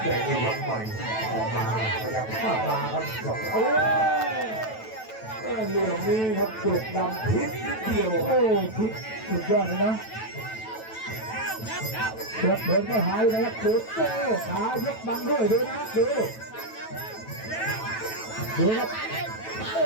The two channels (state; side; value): late; right; 9.1 ms